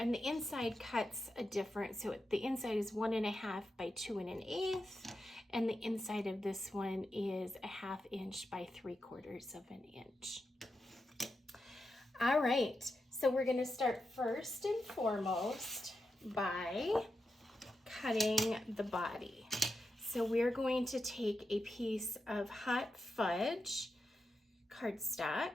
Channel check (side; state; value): both; normal; correlation 0.88